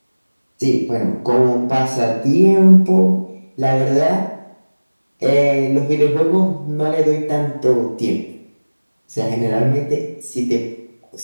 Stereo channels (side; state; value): both; inverted; correlation -1.00